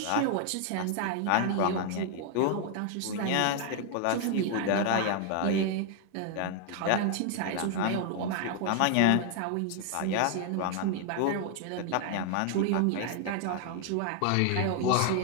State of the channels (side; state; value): both; different; correlation 0.00